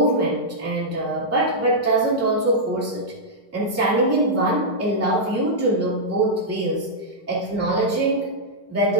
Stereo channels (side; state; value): both; normal; correlation -0.09